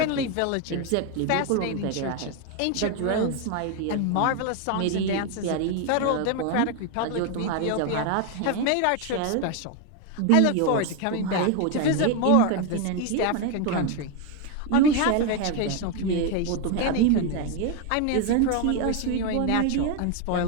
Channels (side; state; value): both; different; correlation 0.01